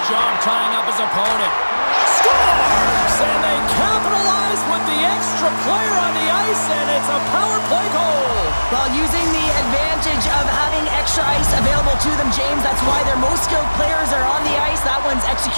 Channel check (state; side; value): inverted; both; correlation -1.00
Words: job tying up his opponent. Scores! And they capitalize with the extra player on the ice, and it's a power play goal. While using the advantage of having extra ice available to them, James, that's why their most skilled players are on the ice. That one's